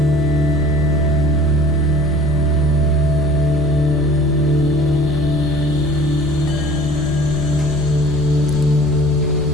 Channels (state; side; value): noise; left; rumble, 12 dB below the sound